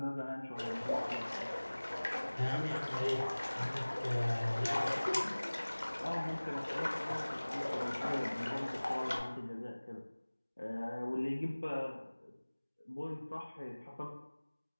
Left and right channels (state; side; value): inverted; both; correlation -1.00